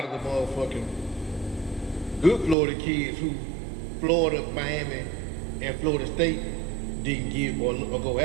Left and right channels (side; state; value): left; drops out; at 2.6 s